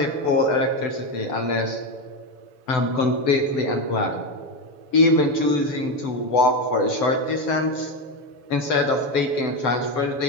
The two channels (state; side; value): late; right; 7.0 ms